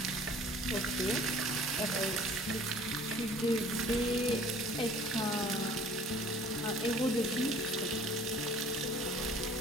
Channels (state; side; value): normal; both; correlation 0.51